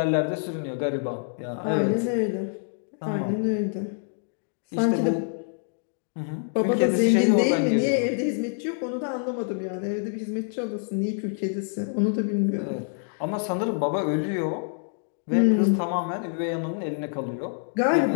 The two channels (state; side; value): silent; right; digital silence